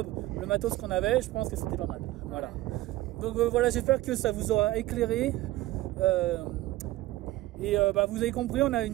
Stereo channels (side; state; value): left; quieter; 16.9 dB